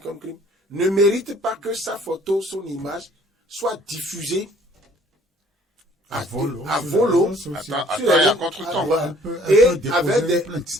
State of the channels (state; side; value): normal; both; correlation 0.56